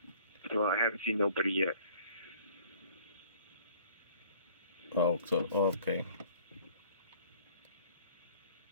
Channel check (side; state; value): both; inverted; correlation -0.53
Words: So I haven't seen nobody yet. Oh, so okay.